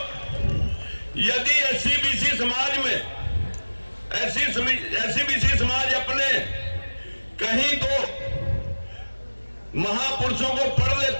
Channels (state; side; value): inverted; both; correlation -1.00